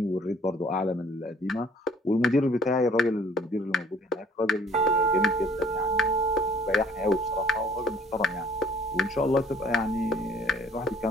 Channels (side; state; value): both; normal; correlation 0.57